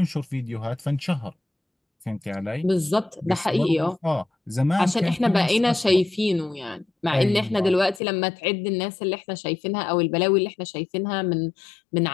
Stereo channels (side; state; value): right; drops out; at 8.0 s